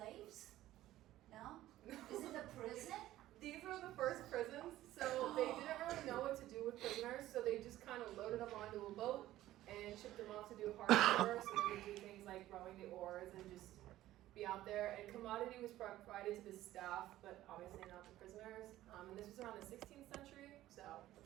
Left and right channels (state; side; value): quieter; left; 14.7 dB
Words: No? Is it a prison? These were the first prisons, so they didn't really know what to do with prisoners, so they just kind of loaded them onto a boat and shipped them off to do hard labor, so they would do things like rowing the oars and just be out there. And commodity was provided to the staff, but obviously not the prisoners. And this was around the 16th century, so